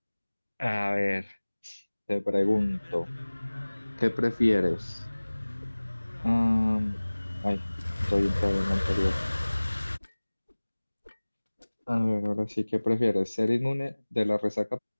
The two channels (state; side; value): inverted; both; correlation -1.00